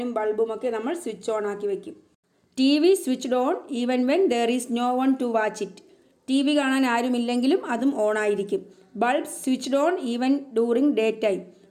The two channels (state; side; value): identical; both; correlation 1.00